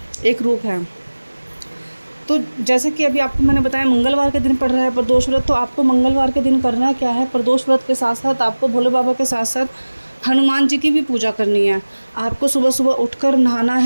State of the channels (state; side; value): inverted; both; correlation -1.00